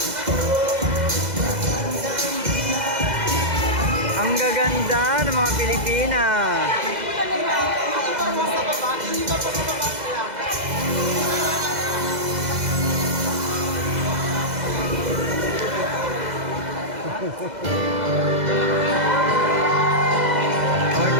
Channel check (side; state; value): left; late; 2.0 ms